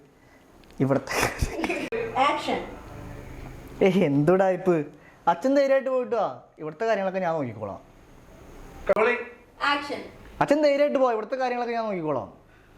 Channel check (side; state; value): both; identical; correlation 1.00